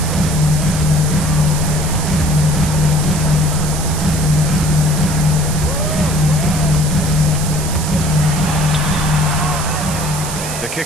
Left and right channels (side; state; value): right; noise; hiss, 7 dB below the sound